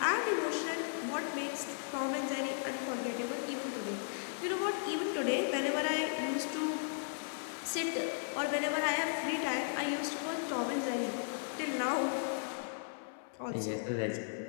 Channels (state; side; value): silent; right; 54 dB below the other